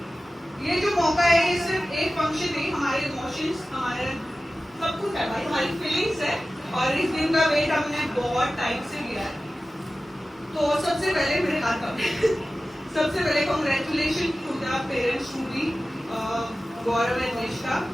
ये जो मौका है ये सिर्फ एक फंक्शन नहीं, हमारे इमोशंस, हमारे सब कुछ है भाई, हमारी फीलिंग्स है और इस दिन का वेट हमने बहुत टाइम से लिया है। तो सबसे पहले मेरे हाथ का सबसे पहले congratulation to the parents to be Gaurav and Nishtha.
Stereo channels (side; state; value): both; normal; correlation 0.95